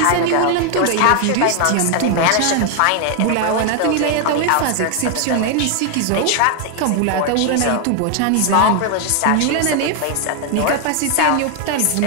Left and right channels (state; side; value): different; both; correlation 0.00